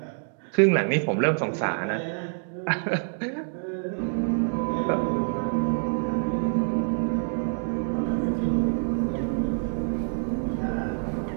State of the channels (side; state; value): left; silent; 61 dB below the other